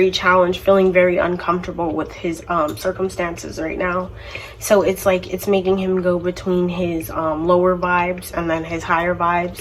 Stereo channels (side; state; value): both; identical; correlation 1.00